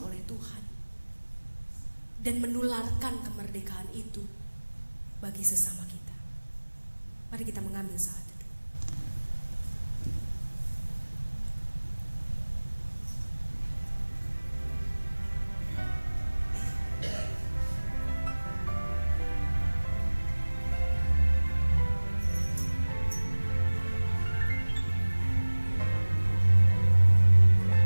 Tuhan, dan menularkan kemerdekaan itu bagi sesama kita. Mari kita mengambil saat itu.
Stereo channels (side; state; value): both; inverted; correlation -1.00